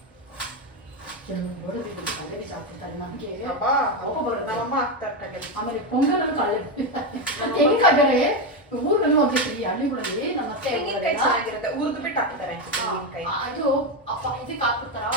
ಆಮೇಲೆ ಪೊಂಗಲ್ ಊರ್ಗಲ್ಲಿ ಹೋಗ್ತೀವಿ ಹಳ್ಳಿಗಳಲ್ಲಿ ನಮ್ಮ ಅತ್ತೆ ಊರ್ದು ಬಿಟ್ಟು ಹಾಕ್ತಾರೆ. ಅದು ಅಪ್ಪ ಇದಕ್ಕೆ ಹಾಕ್ಬಿಡ್ತಾರ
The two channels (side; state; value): both; normal; correlation 0.10